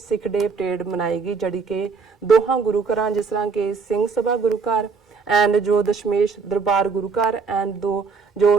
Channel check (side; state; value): left; quieter; 5.1 dB